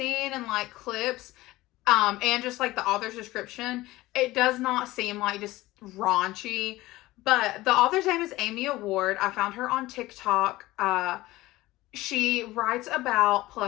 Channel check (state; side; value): quieter; right; 18.2 dB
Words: and like clips, and just like the author's description, it does not seem like just raunchy. But the author's name is Amy Award. I found her on TikTok. She writes about